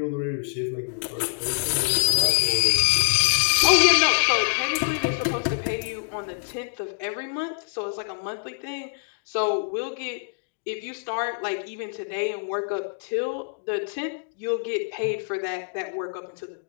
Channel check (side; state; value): right; silent; digital silence